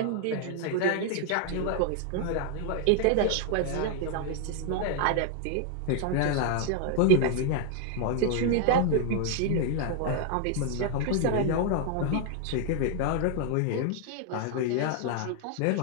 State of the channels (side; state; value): both; different; correlation 0.00